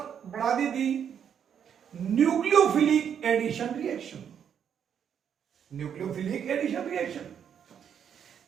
बढ़ा दी nucleophilic addition reaction. Nucleophilic addition reaction,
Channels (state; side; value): quieter; left; 8.3 dB